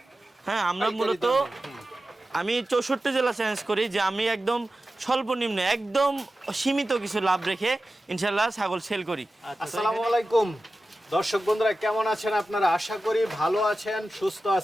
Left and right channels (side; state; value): both; normal; correlation 0.94